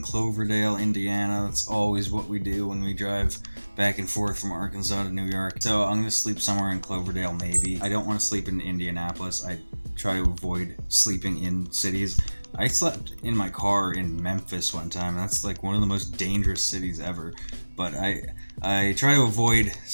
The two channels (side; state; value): both; inverted; correlation -1.00